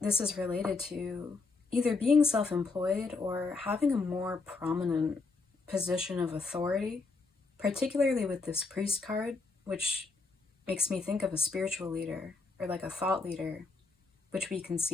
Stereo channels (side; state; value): right; quieter; 4.0 dB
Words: is related to either being self-employed or having a more prominent position of authority, particularly with this Priest card, which makes me think of a spiritual leader or like a thought leader, which we can